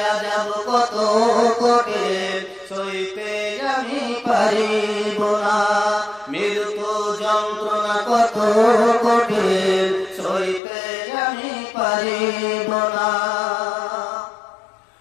আযাব কত কঠিন, সইতে আমি পারিব না, মৃত্যু যন্ত্রণা কত কঠিন, সইতে আমি পারিব না।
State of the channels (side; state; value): right; drops out; at 10.6 s